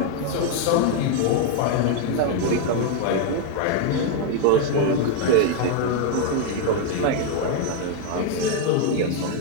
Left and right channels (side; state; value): both; different; correlation 0.00